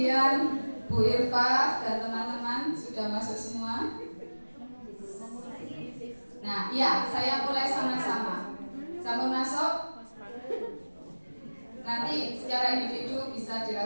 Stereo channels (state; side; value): inverted; both; correlation -1.00